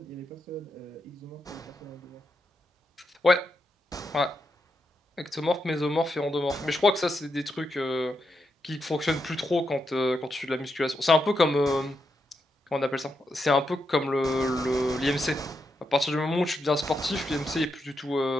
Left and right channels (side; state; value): both; normal; correlation 0.84